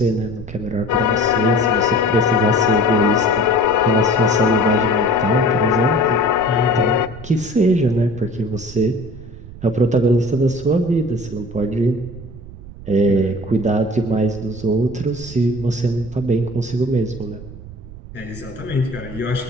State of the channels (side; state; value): right; noise; rumble, 15 dB below the sound